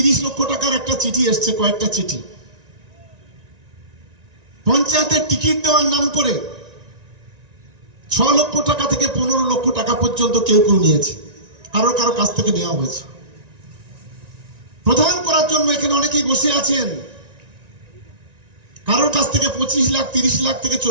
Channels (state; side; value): late; left; 1.9 ms